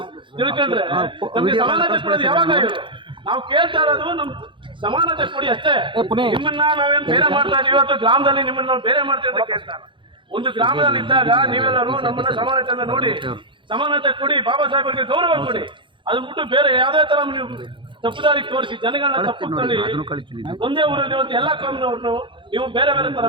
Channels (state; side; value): late; left; 0.24 ms